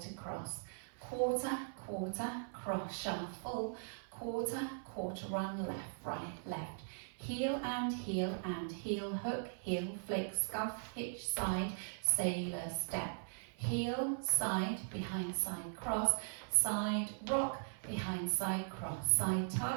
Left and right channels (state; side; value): silent; left; 51 dB below the other